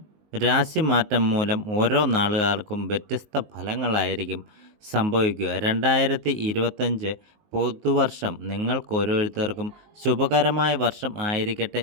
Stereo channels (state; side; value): late; left; 19 ms